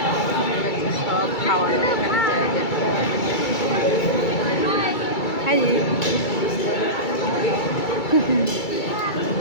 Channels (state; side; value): late; right; 2.3 ms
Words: সব খাওয়ানো এখানে জায়গা। হাই